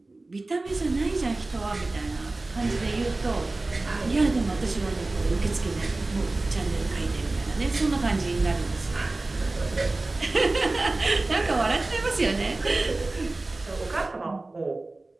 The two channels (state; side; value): quieter; left; 3.1 dB